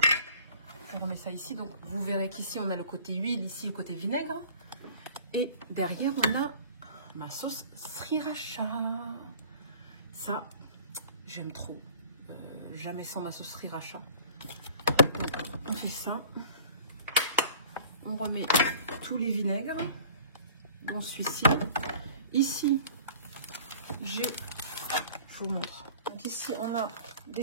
Je remets ça ici. Donc, vous verrez qu'ici, on a le côté huile, ici, le côté vinaigre. Et derrière, on a ma sauce sriracha. Ça, j'aime trop. Jamais sans ma sauce sriracha. On fait ça. On remet tous les vinaigres dans celui-ci. Ici, je vous montre. Donc ici, on a des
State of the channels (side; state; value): both; inverted; correlation -0.48